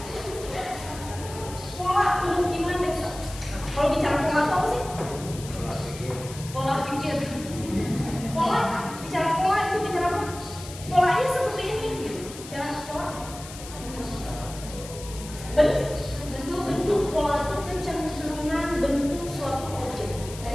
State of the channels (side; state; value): left; noise; hiss, 14 dB below the sound